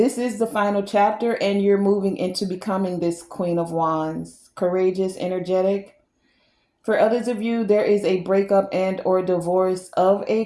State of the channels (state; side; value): identical; both; correlation 1.00